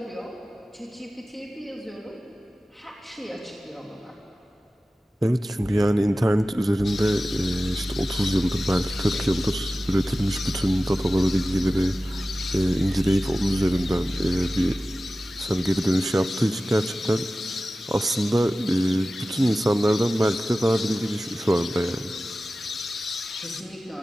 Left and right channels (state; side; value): normal; both; correlation 0.95